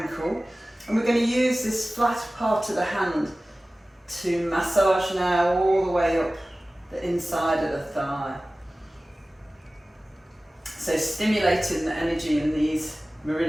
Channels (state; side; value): normal; both; correlation 0.97